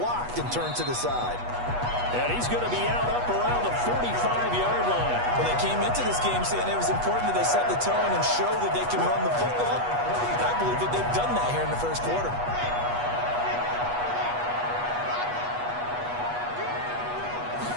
and turned to the side. And he's going to be out up around the 45-yard line. Well, they came into this game saying it was important that they set the tone and show that they can run the football. I believe that they've done that here in the 1st quarter.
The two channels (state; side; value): late; left; 8.2 ms